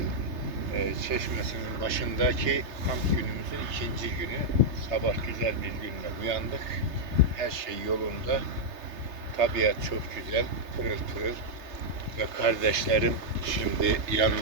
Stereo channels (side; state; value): left; late; 3.3 ms